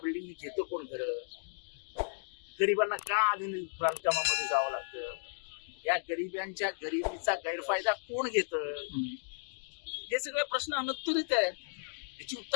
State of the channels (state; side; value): silent; right; digital silence